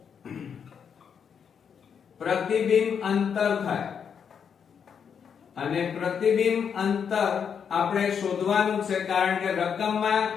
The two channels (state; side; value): quieter; right; 7.2 dB